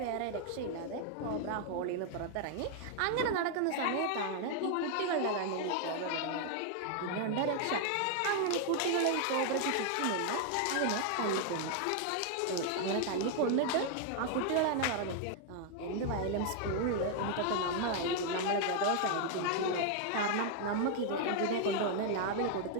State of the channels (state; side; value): different; both; correlation 0.00